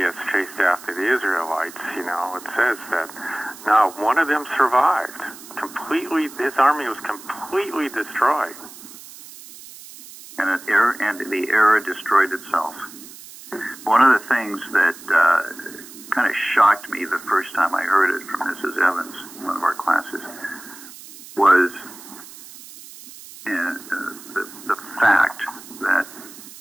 chased after the Israelites, it says that not one of them survived. Completely, his army was completely destroyed. And the era destroyed itself. One of the things that kind of shocked me the first time I heard it from Mrs. Evans in one of our classes was the fact that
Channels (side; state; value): right; noise; hiss, 17 dB below the sound